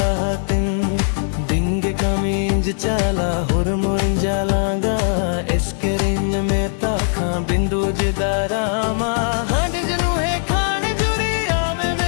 hatin dinge kaminj chala hormon jalaga eskerin meta kha bindu jidarama hande janu he khane juri ame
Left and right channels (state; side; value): silent; right; digital silence